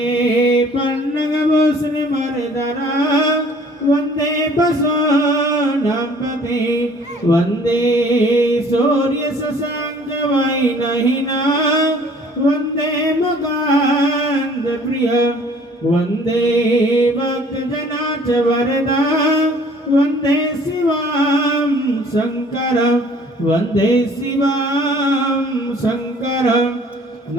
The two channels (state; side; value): normal; both; correlation 0.54